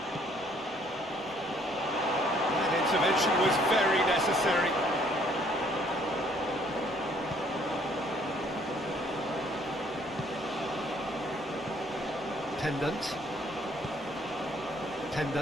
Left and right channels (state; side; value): normal; both; correlation 0.63